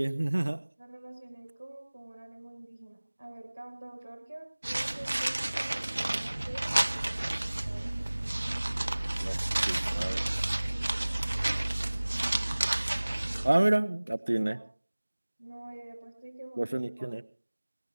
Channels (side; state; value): both; inverted; correlation -1.00